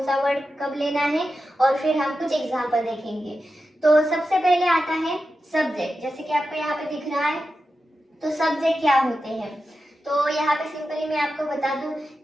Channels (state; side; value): normal; both; correlation 0.91